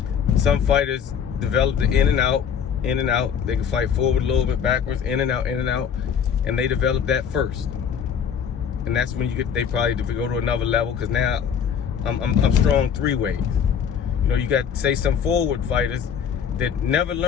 Some fighters develop the in and out. They can fight forward a little bit, backwards, in and out, and they develop that first. And that's when they probably go to another level, because now I'm strong three ways. You got, say, some forward fighters that never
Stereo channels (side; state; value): right; quieter; 7.6 dB